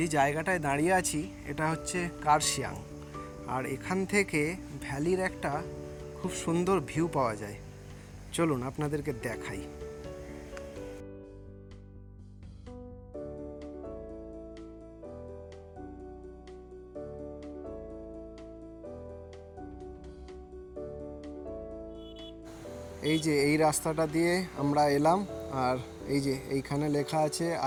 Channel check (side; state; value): both; identical; correlation 1.00